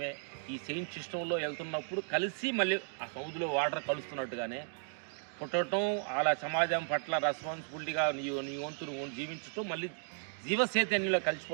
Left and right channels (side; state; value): left; silent; 54 dB below the other